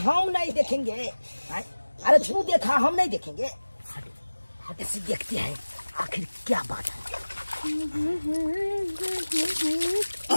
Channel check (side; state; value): both; inverted; correlation -1.00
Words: नहीं देखेंगे। अरे तू देखा, हम नहीं देखेंगे। हट से देखते हैं आखिर क्या बात है।